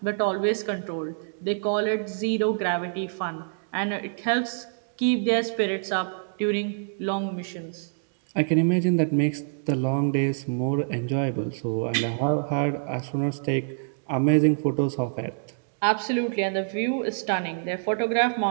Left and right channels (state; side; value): silent; left; digital silence